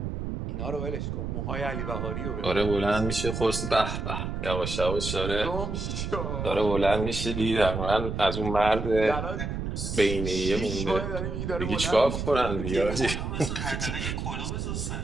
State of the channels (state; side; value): noise; right; rumble, 4 dB below the sound